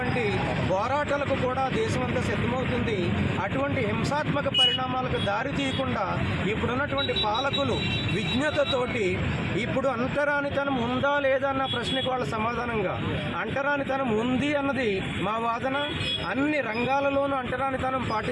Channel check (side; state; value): both; identical; correlation 1.00